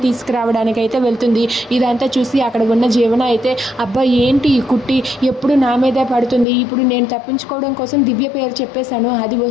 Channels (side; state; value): right; drops out; at 6.5 s